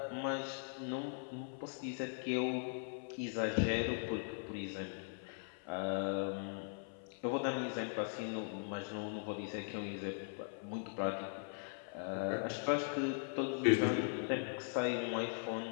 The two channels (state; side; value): silent; right; 51 dB below the other